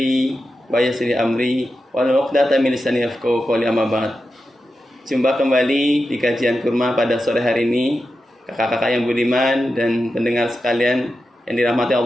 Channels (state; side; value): normal; both; correlation 0.90